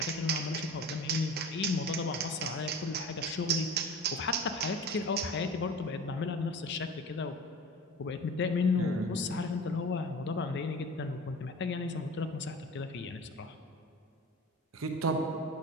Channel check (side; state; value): both; normal; correlation 0.37